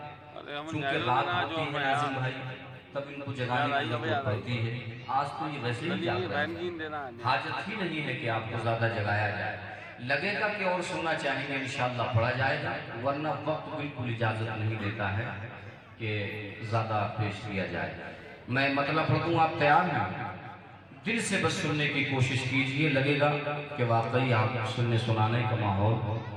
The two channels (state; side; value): identical; both; correlation 1.00